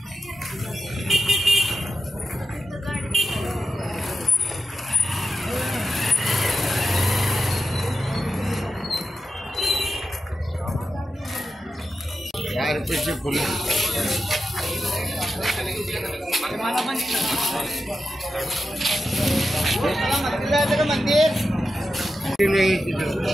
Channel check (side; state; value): both; normal; correlation 0.89